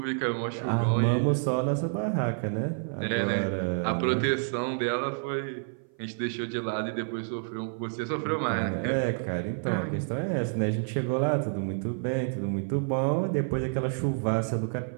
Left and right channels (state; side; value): silent; left; 56 dB below the other